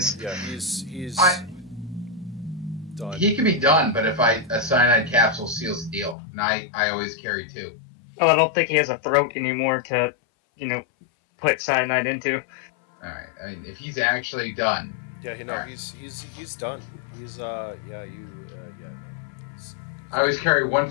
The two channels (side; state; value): right; drops out; at 6.2 s